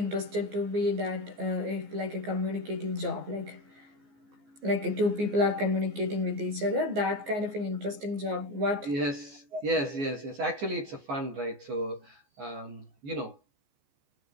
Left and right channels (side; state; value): left; late; 14 ms